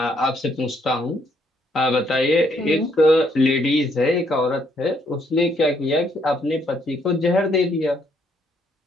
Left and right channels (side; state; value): both; normal; correlation 0.70